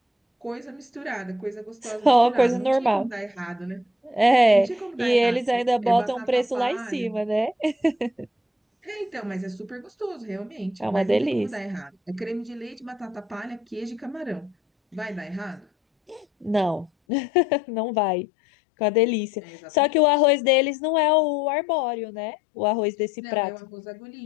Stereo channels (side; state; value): right; drops out; at 16.9 s